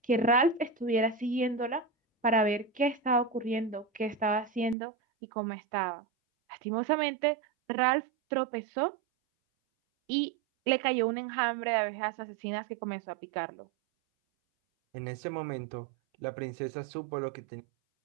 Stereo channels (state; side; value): drops out; left; at 4.8 s